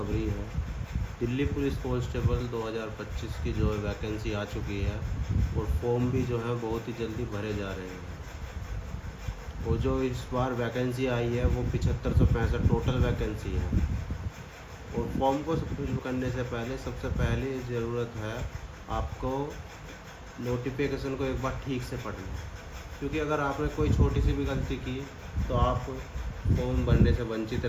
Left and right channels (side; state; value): both; identical; correlation 1.00